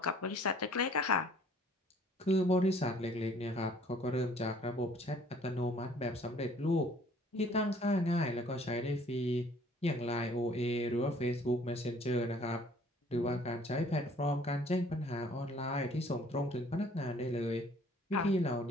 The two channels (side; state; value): both; normal; correlation 0.57